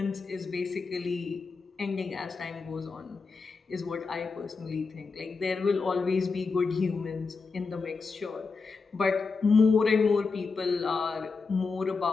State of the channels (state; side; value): quieter; right; 4.5 dB